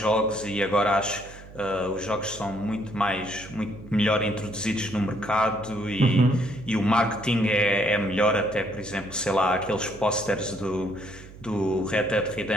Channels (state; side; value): noise; right; hum, 18 dB below the sound